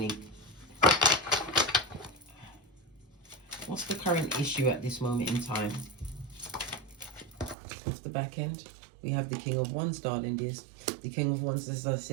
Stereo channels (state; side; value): drops out; left; at 7.6 s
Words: What's the current issue at this moment in time? The back end, we have the King of Wands, darling dears. The King of Wands, as I